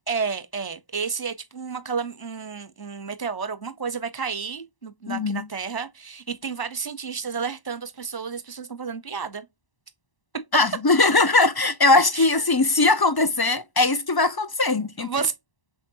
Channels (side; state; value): right; late; 1.0 ms